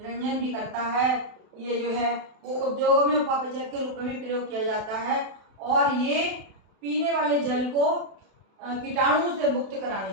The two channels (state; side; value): late; left; 32 ms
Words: भी करता है, ये जो है वो उद्योगों में उपापचयक के रूप में भी प्रयोग किया जाता है, और ये पीने वाले जल को कीटाणुओं से मुक्त कराने